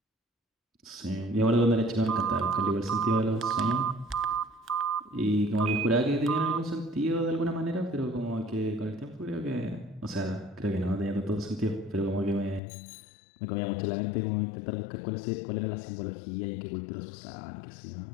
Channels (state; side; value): drops out; right; at 12.6 s